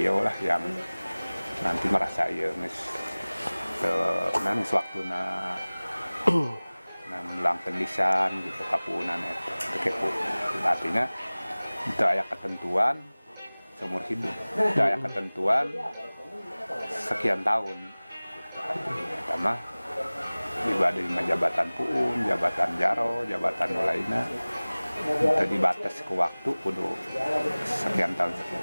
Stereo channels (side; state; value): both; inverted; correlation -1.00